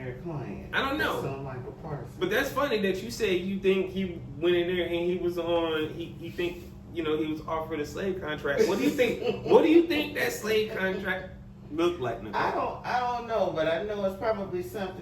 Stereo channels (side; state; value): both; identical; correlation 1.00